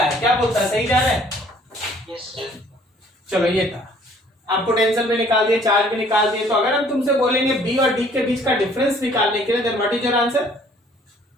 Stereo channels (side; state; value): both; normal; correlation 0.58